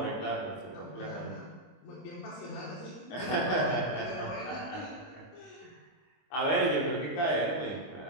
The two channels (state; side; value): late; right; 24 ms